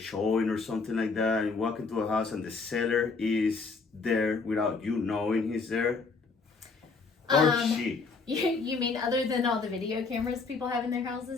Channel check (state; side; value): quieter; right; 4.4 dB